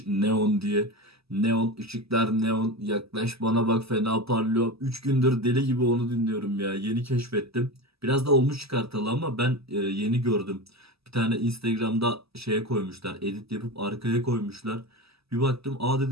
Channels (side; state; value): left; late; 0.78 ms